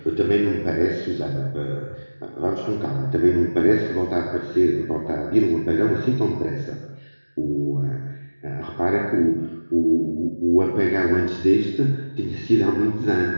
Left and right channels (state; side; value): inverted; both; correlation -1.00